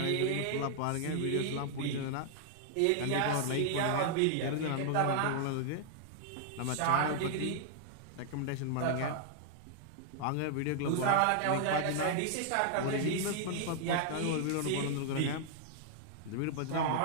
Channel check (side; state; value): both; different; correlation -0.01